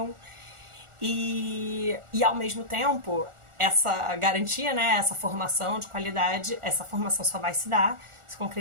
e ao mesmo tempo essa garantia, né, essa formação de qualidade, essa formação só vai se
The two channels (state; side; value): late; left; 1.4 ms